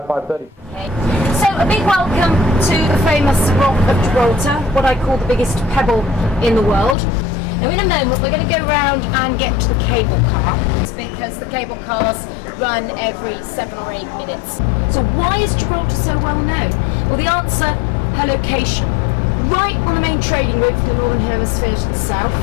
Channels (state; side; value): drops out; right; at 7.0 s